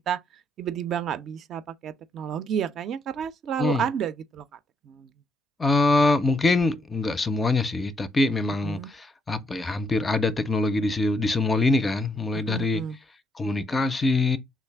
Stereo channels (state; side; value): normal; both; correlation 0.74